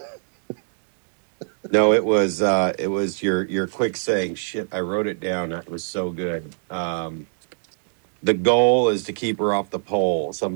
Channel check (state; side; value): silent; left; digital silence